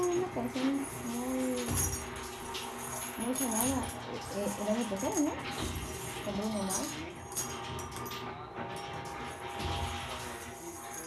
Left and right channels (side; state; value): both; identical; correlation 1.00